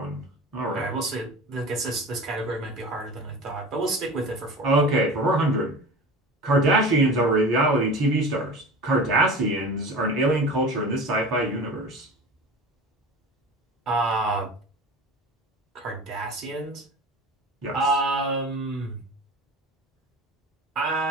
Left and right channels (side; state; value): both; normal; correlation 0.35